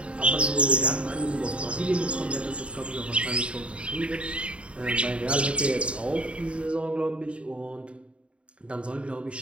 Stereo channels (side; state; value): left; late; 0.059 ms